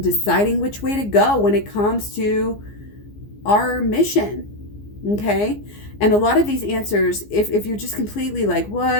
which way to go when it comes to our mission. Okay. And a lot of these answers, if you're just completely like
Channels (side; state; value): right; late; 15 ms